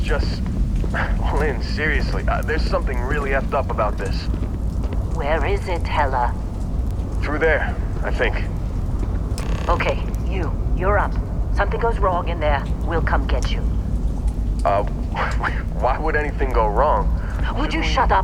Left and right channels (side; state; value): both; identical; correlation 1.00